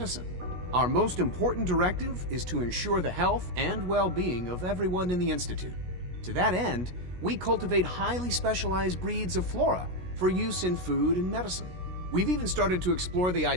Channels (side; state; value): left; late; 17 ms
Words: Our most important directive is to ensure the health and well-being of everyone in the Institute. To that end, we cultivate highly specialized breeds of flora for use in food and medicine. We've even started to explore the